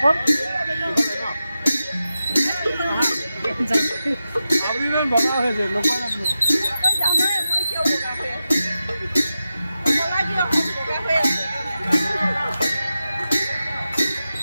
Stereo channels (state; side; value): inverted; both; correlation -0.92